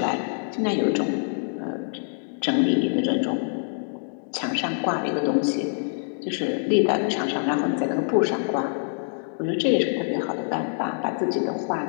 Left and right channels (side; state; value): right; silent; digital silence